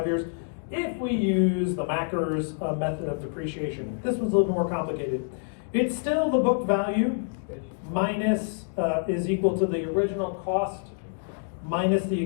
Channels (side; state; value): right; silent; digital silence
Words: years? If we use the MACRS method of depreciation, this one's a little bit more complicated. It's still the book value minus is equal to the original cost minus the